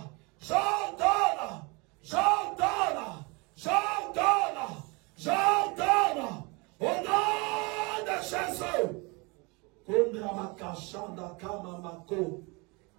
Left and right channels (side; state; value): left; quieter; 28.5 dB